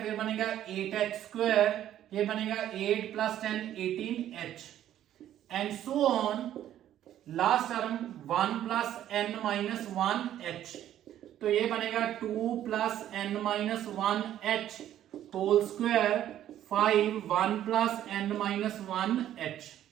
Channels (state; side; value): quieter; left; 11.7 dB